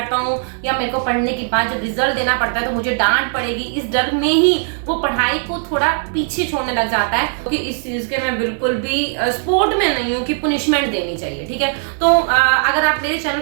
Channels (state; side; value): silent; left; 67 dB below the other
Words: हूँ या मेरे को पढ़ने के बाद जब रिजल्ट देना पड़ता है तो मुझे डांट पड़ेगी, इस डर में ही वो पढ़ाई को थोड़ा पीछे छोड़ने लग जाता है। क्योंकि इस चीज के मैं बिल्कुल भी सपोर्ट में नहीं हूँ कि पुनिशमेंट देनी चाहिए, ठीक है। तो अगर आप मेरे चैनल